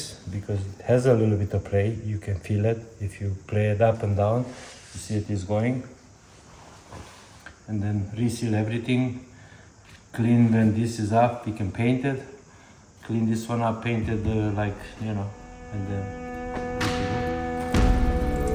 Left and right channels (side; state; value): both; identical; correlation 1.00